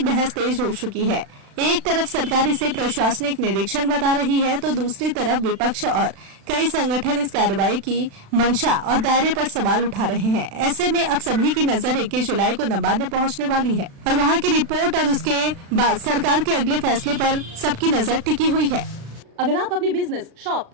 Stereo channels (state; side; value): late; left; 36 ms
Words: बहस तेज हो चुकी है। एक तरफ सरकार इसे प्रशासनिक निरीक्षण बता रही है तो दूसरी तरफ विपक्ष और कई संगठन इस कार्रवाई की मंशा और दायरे पर सवाल उठा रहे हैं। ऐसे में अब सभी की नजर 21 जुलाई को नबार्ड में पहुंचने वाली है और वहां की रिपोर्ट और उसके बाद सरकार के अगले फैसले पर सबकी नजर टिकी हुई है। अगर आप अपने बिजनेस, शॉप,